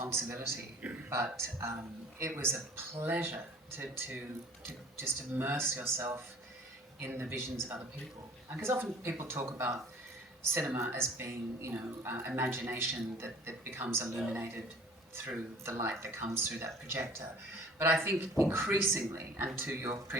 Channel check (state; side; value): normal; both; correlation 0.49